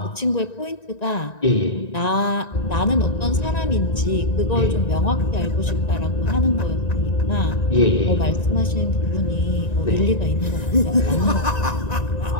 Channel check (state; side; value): late; right; 1.9 ms